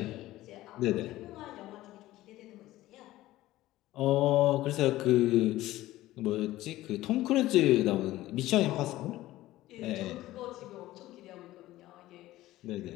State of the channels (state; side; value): quieter; right; 16.1 dB